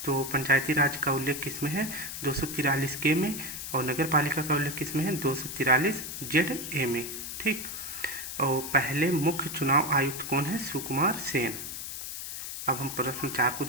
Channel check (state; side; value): noise; left; hiss, 7 dB below the sound